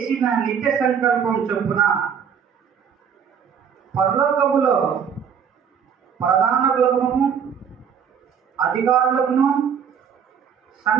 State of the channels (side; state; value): left; quieter; 7.5 dB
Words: నిత్య సంకల్పం చొప్పున పరలోకములో ప్రధానులను అధికారులను